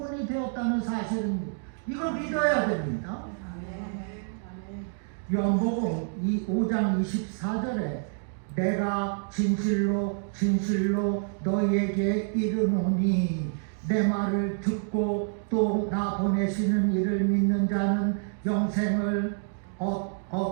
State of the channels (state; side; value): silent; left; 59 dB below the other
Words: 되었다는 사실입니다. 이걸 믿어야 됩니다. 요한복음 5장 24절에 내가 진실로 진실로 너희에게 이르노니 내 말을 듣고 또 나 보내시는 이를 믿는 자는 영생을